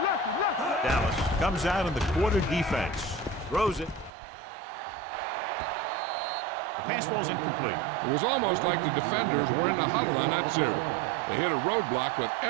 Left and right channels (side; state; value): left; drops out; at 4.1 s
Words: Dallas comes out in the quarter defense. Throws it. The pass ball's incomplete. It was almost like the defenders were in the huddle on that series. They hit a roadblock with